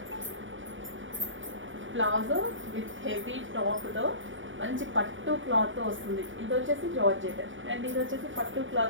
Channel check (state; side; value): late; left; 0.56 ms